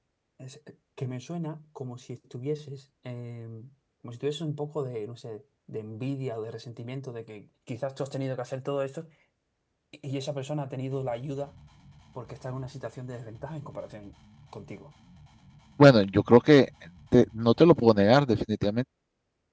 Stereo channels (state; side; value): identical; both; correlation 1.00